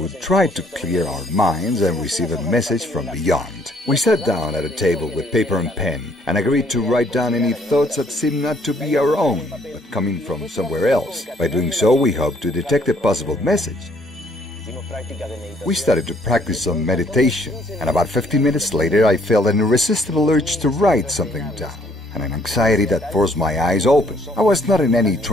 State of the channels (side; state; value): both; normal; correlation 0.65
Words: try to clear our minds and receive a message from beyond. We sat down at a table with paper and pen and agreed to write down any thoughts that seemed not to be our own, but coming from somewhere else. By doing so, we hoped to detect a possible message. We started to practice some meditation, and about 15 minutes later I felt an irresistible urge to write something down, and an anxiety that forced my eyes open. I was not in any